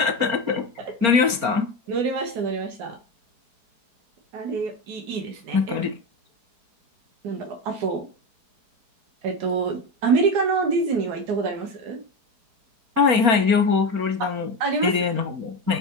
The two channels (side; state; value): left; late; 4.3 ms